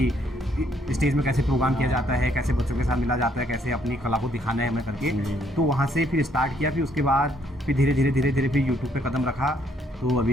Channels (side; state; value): both; normal; correlation 0.69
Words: स्टेज में कैसे प्रोग्राम किया जाता है, कैसे बच्चों के साथ मिला जाता है, कैसे अपनी कला को दिखाना है हमें करके। तो वहाँ से फिर स्टार्ट किया। फिर उसके बाद फिर धीरे धीरे फिर यूट्यूब पे कदम रखा। तो